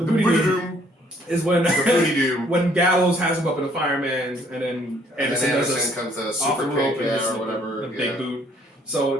Booty Doom is when when Gallows has him up in the fireman's, and then Anderson comes to a super kick or whatever, the big boot.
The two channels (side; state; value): both; normal; correlation 0.62